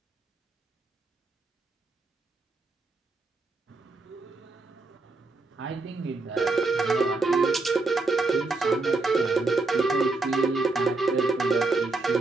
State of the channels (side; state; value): left; quieter; 3.4 dB